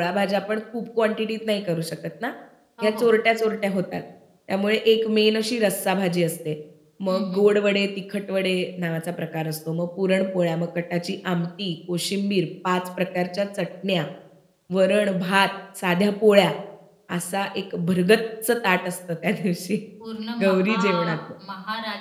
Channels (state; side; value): identical; both; correlation 1.00